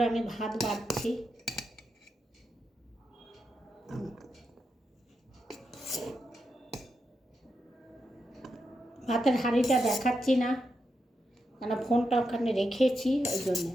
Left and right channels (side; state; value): both; normal; correlation 0.85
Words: আমি ভাত বাড়ছি। ভাতের হাঁড়িটা দেখাচ্ছি না, কেন ফোনটা ওখানে রেখেছি, ওই জন্য